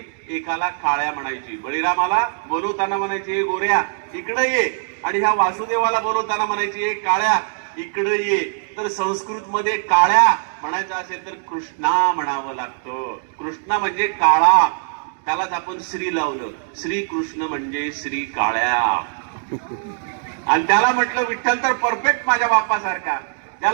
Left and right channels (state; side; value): silent; left; digital silence